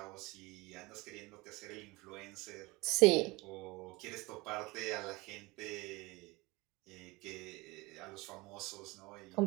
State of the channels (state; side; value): quieter; left; 23.1 dB